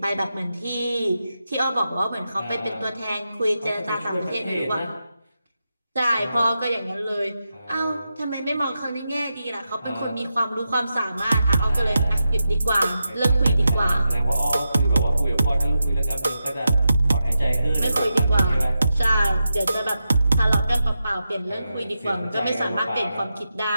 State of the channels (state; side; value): inverted; both; correlation -0.89